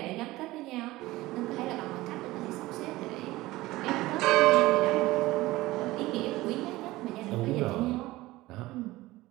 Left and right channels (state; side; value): quieter; left; 18.5 dB